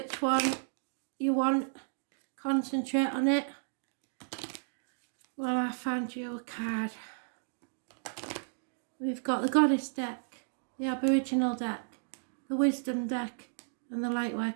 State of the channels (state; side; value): silent; left; digital silence